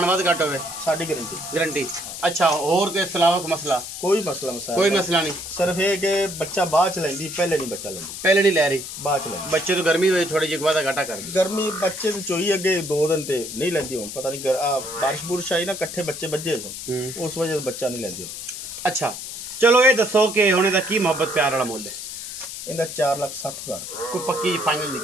वाद घट होवे साडी गारंटी गारंटी। अच्छा और के अलावा मसला? कोई मसला कोई मसला नहीं। सिर्फ ये कि बच्चा बाद च लेंदी पहले नहीं बच्चा लेंदी। पहले नहीं ले रही बाद च लेंदी। बच्चे तो गर्मी हुई थोड़ी जी वादा घाटा कर गर्मी बच्चे तो चोई अगे 2 दिन ते नहीं लेंदी हुन पता नहीं बारिश बुरिश आई ना कट्ठे बच्चे बज्जे उस वजह से बच्चा नहीं लेंदी। अच्छा चलो ये दसो कि हुणे दा की मोहब्बत प्यार वाला मुल है? इंदा 4,60,000। कोई पक्की फाइनल दी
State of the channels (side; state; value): left; noise; hiss, 9 dB below the sound